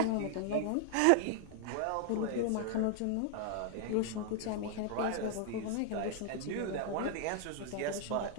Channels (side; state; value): both; different; correlation 0.00